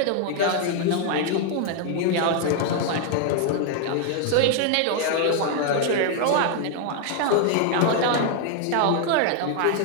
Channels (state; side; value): different; both; correlation 0.00